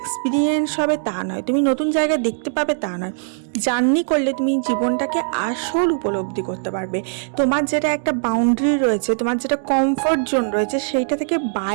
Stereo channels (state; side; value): silent; left; digital silence